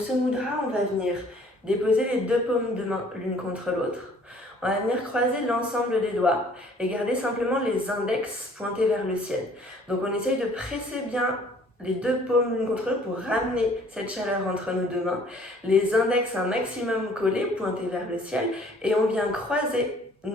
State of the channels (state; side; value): normal; both; correlation 0.56